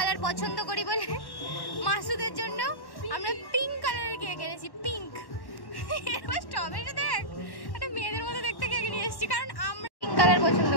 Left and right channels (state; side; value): late; right; 1.1 ms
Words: পছন্দ করি বলে মাসুদের জন্য আমরা পিঙ্ক কালারের কেক এনেছি। পিঙ্ক এবার স্ট্রবেরিটা দেখ, একটা মেয়েদের মতো দেখতে কেক নিয়ে এসেছি, কারণ আমরা পিঙ্ক কালার পছন্দ